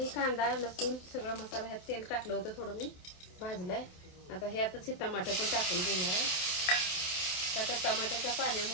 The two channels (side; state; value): right; late; 27 ms